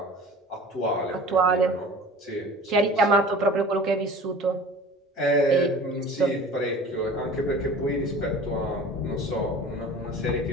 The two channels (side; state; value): both; normal; correlation 0.41